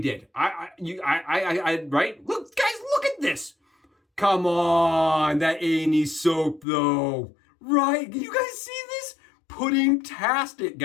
Right? Look, guys, look at this. Come on, that A&E soap, though. Right? You guys see this? Pudding-tastic,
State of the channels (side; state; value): right; drops out; at 6.7 s